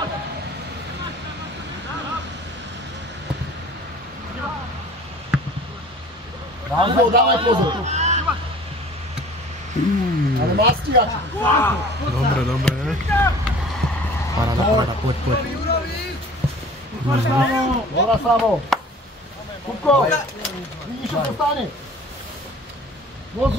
Rázov, dávaj pozor. Ale má stíhač. Dobre. Paráda, poď. Dobra, Samo. Kupko, vidíš, čo sa stane?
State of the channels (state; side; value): normal; both; correlation 0.46